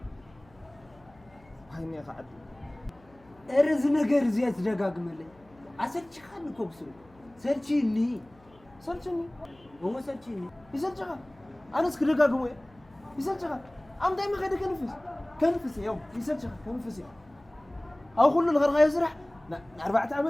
هايني قاعد ارز ነገር زيات ደጋግመልኝ አሰልች ካን ኮብሱ ሰልችኒ هو سلچني يسلچها انا اسك ደጋግሞ يسلچها ام دايما خد كنفس يوم يسلچها كنفس او كل الغرغا يسرح 4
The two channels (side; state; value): left; noise; hum, 28 dB below the sound